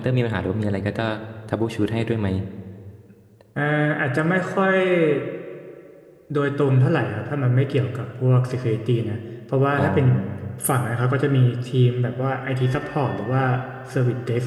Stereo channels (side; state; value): both; identical; correlation 1.00